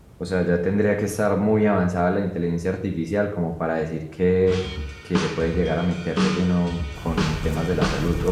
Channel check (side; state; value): both; identical; correlation 1.00